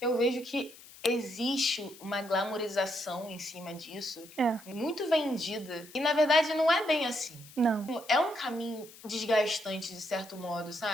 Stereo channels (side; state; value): left; noise; hiss, 20 dB below the sound